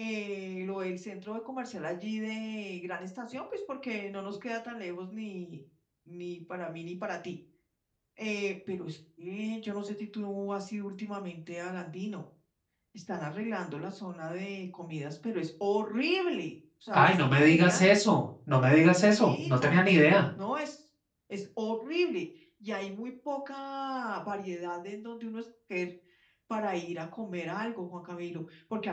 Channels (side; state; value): both; identical; correlation 1.00